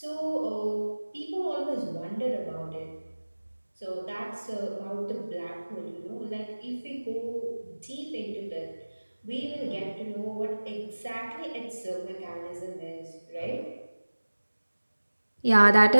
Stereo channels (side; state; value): both; inverted; correlation -1.00